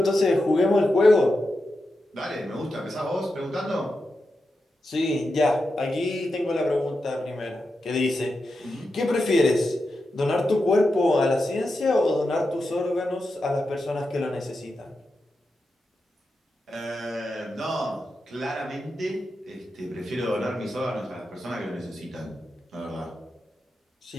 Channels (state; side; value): normal; both; correlation 0.89